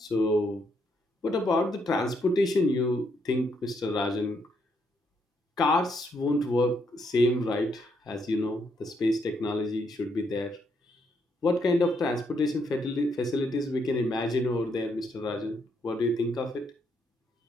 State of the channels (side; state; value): both; normal; correlation 0.75